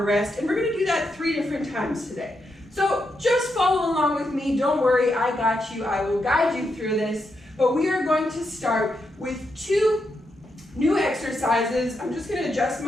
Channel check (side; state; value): both; normal; correlation 0.83